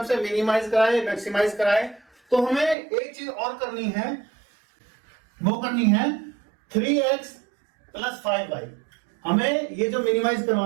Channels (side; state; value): left; drops out; at 2.8 s